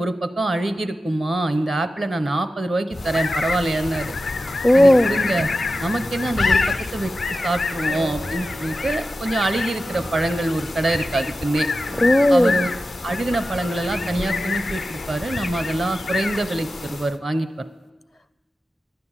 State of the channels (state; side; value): normal; both; correlation 0.93